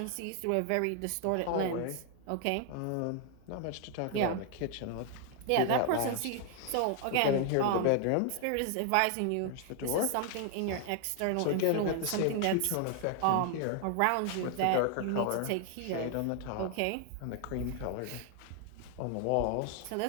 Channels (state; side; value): different; both; correlation 0.00